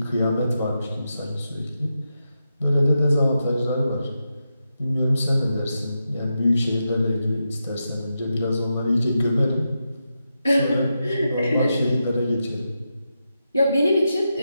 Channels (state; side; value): inverted; both; correlation -0.87